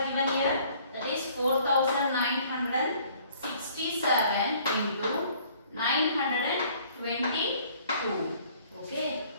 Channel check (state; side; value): inverted; both; correlation -0.57